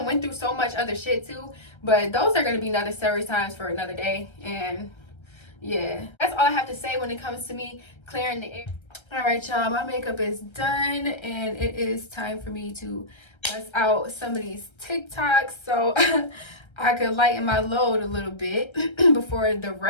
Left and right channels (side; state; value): right; late; 1.3 ms